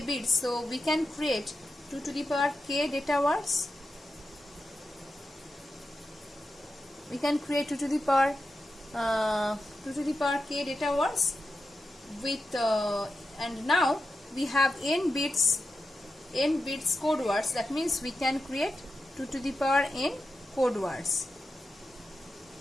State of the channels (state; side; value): normal; both; correlation 0.90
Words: bits, so we can create 2 to the power k data words. We can create 2 to the power k data words with and now we have n bits code words. That means we can create 2 to the power n code words.